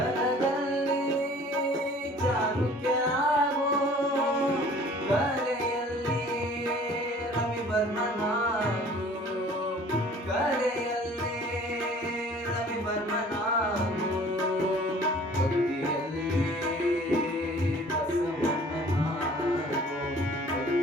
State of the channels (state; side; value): normal; both; correlation 0.50